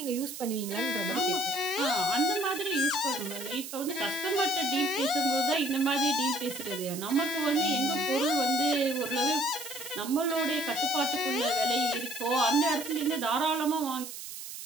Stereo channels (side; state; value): right; noise; hiss, 10 dB below the sound